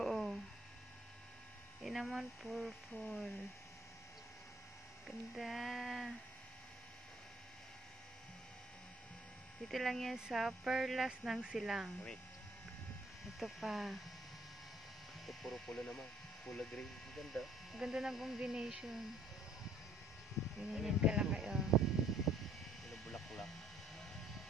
Yan naman purple. Ganda. Dito lang yan sa Perlas ng Silang. Wait. Ito pa. Ito puro pula naman. Pula green. Ganda. Ganda ng combination. Ganyan kalaki, oh. Yung bulaklak.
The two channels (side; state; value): both; normal; correlation 0.61